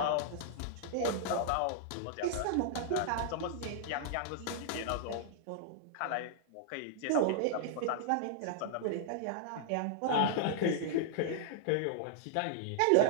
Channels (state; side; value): different; both; correlation -0.01